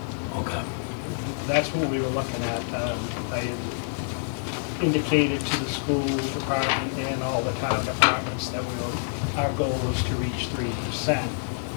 Okay. that's what we were looking at. I had indicated to the school department and all the town departments that our goal was to reach 3%.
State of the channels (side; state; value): right; silent; digital silence